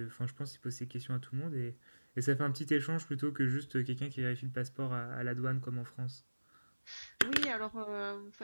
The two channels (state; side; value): inverted; both; correlation -1.00